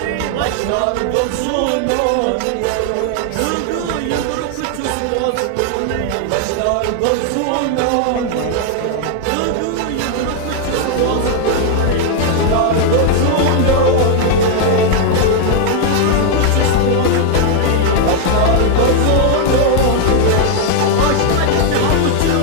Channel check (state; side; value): different; both; correlation 0.00